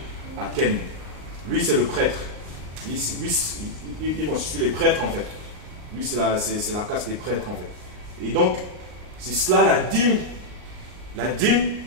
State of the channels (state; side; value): late; left; 39 ms